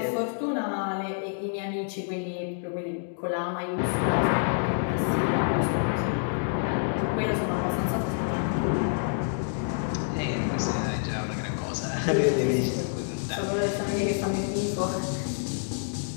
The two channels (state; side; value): silent; right; digital silence